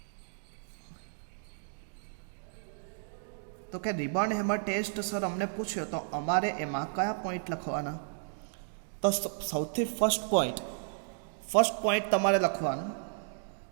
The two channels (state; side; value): silent; left; digital silence